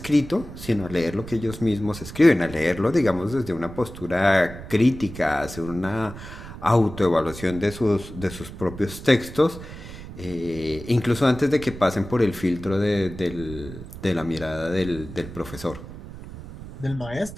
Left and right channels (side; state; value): right; noise; rumble, 13 dB below the sound